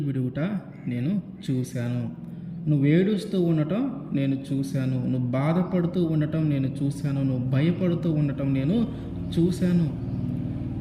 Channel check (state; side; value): identical; both; correlation 1.00